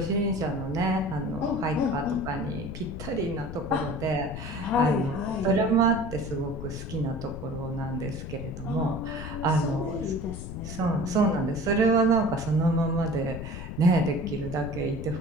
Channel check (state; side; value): noise; left; rumble, 8 dB below the sound